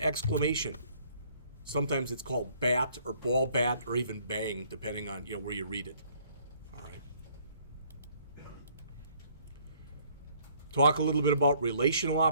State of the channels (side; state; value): both; inverted; correlation -0.62